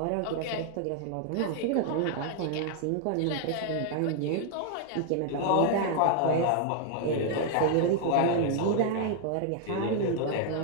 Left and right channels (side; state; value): both; different; correlation 0.00